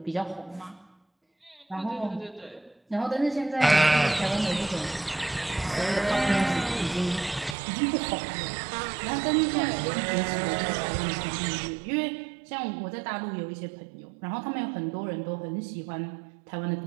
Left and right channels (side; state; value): left; drops out; at 7.6 s